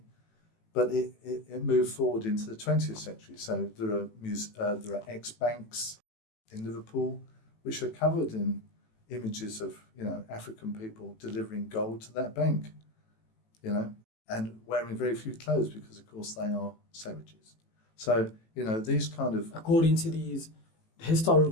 but it moved forward into the 20th century. So there are ex-banks in Liverpool which are covered in images of African people delivering gold to that bank, and wearing very few clothes because, of course, they are savages. So, these kind of... According to these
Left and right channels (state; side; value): late; right; 18 ms